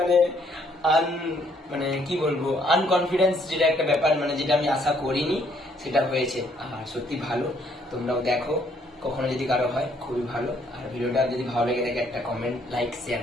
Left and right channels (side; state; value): both; normal; correlation 0.67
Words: মানে মানে কি বলবো, আনকনফিডেন্স, যেটা একটা ব্যাপার, মানে যেটা আমি আশা করিনি, সেটা হয়েছে। আর সত্যি ভালো, তোমরাও দেখো কখনো যদি কারো হয়, খুবই ভালো। আর ভিডিওটা যদি ভালো লেগে থাকে একটা কমেন্ট, লাইক, শেয়ার